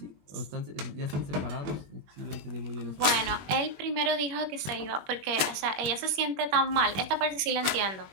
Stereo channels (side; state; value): left; late; 21 ms